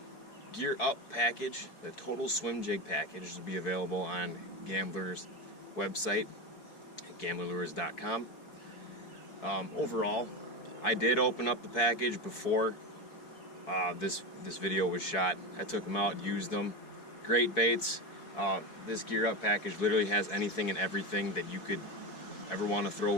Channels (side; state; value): right; late; 4.6 ms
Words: Gear Up package. The Total Swim Jig package will be available on Gambler's website at gamblerlures.com. Overall, I did open up the package before this video was shot. I took them out, used them. Great baits. This Gear Up package literally has anything and everything that you could ever want to throw